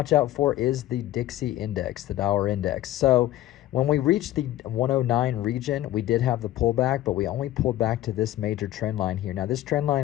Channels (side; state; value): right; quieter; 14.4 dB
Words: out for is the Dixie index, the dollar index. So when we reached the 109 region, we did have the pullback, but we only pulled back to this major trend line here. Now, this trend